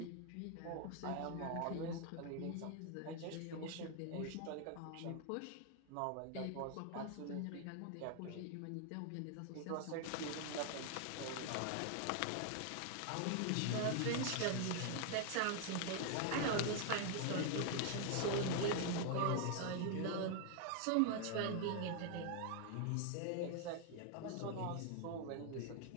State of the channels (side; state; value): both; different; correlation 0.00